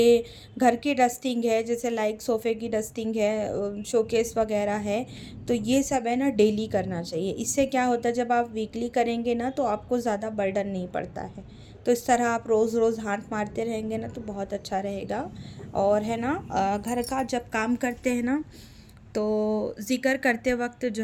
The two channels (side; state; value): both; identical; correlation 1.00